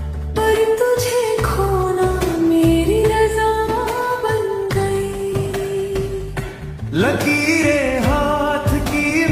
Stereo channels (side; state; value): both; identical; correlation 1.00